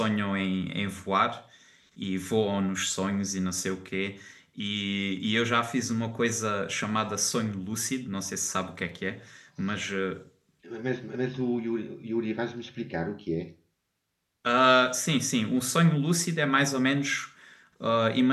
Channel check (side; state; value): both; identical; correlation 1.00